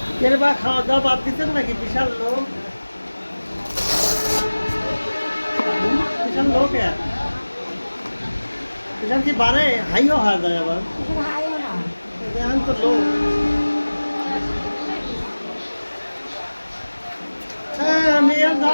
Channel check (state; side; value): inverted; both; correlation -1.00